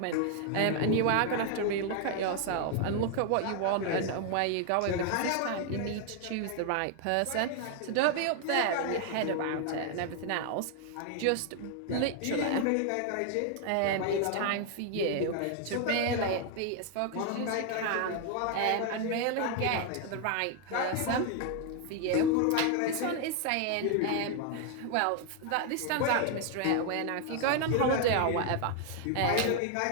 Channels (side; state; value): both; different; correlation 0.00